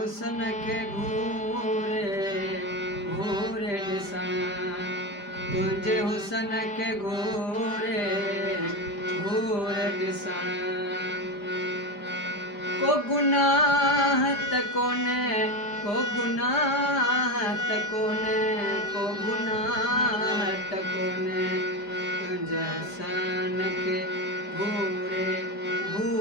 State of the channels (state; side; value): late; right; 5.0 ms